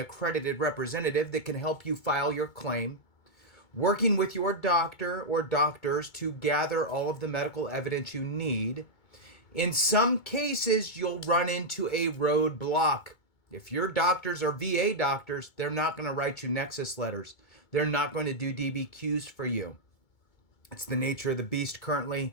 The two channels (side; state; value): right; late; 2.2 ms